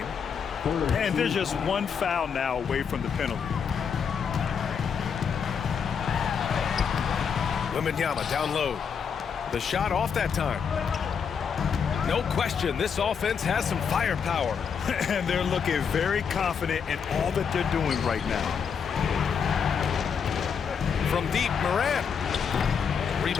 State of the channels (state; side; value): quieter; right; 6.7 dB